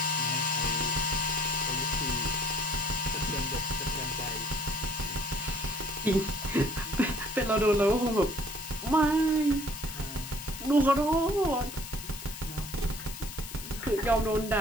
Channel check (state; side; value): noise; left; hiss, 12 dB below the sound